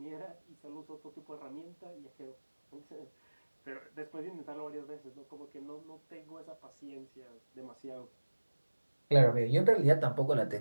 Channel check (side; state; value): both; inverted; correlation -1.00